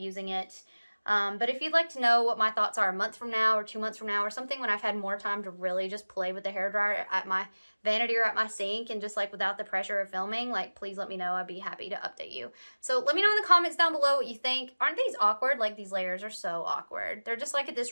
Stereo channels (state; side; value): inverted; both; correlation -1.00